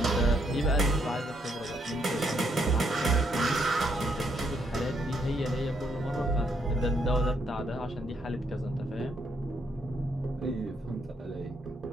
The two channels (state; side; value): normal; both; correlation 0.74